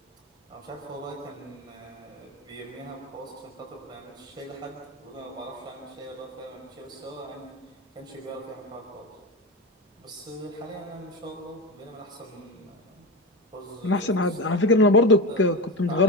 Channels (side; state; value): both; normal; correlation 0.19